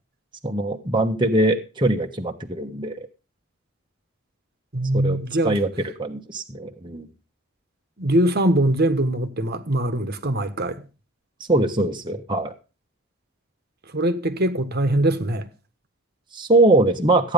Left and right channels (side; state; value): both; normal; correlation 0.47